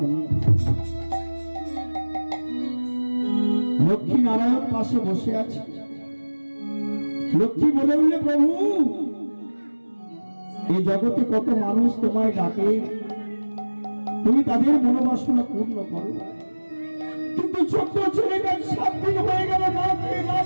লক্ষ্মী নারায়ণ পাশে বসে আছে। লক্ষ্মী বলে উঠলে, প্রভু এই জগতে কত মানুষ তোমায় ডাকে, তুমি তাদের মনোবাসনা পূর্ণ করো, কিন্তু ছোট্ট ছেলেটা 7 দিন হয়ে গেল না খেয়ে না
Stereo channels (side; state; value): both; inverted; correlation -1.00